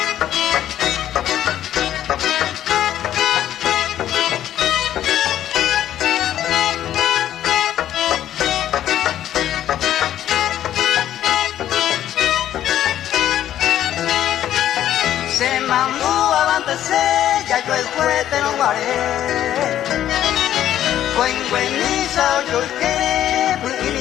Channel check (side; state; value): right; quieter; 11.6 dB